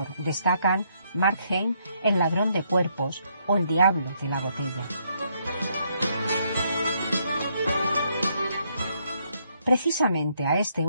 destacan Markheim, El ladrón de cuerpos o El diablo de la botella. Precisamente a este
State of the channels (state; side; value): inverted; both; correlation -0.72